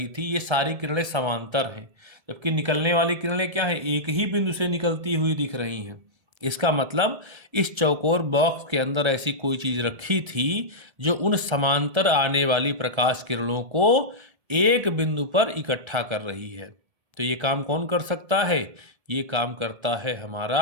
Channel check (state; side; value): late; left; 1.7 ms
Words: थी ये सारी किरणें समांतर हैं, जबकि निकलने वाली किरणें क्या हैं, एक ही बिंदु से निकलती हुई दिख रही हैं। इसका मतलब इस चौकोर बॉक्स के अंदर ऐसी कोई चीज रखी थी जो उन समांतर आने वाली प्रकाश किरणों को एक बिंदु पर इकट्ठा कर रही है। तो ये काम कौन कर सकता है, ये काम करता है